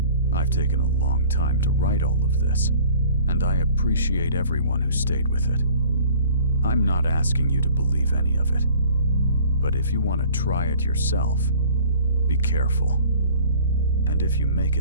I've taken a long time to write all of this, and I appreciate everyone who stayed with it. I'm not asking you to believe any of it, but if you want to try it yourself, be careful. And if you make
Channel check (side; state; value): both; inverted; correlation -0.49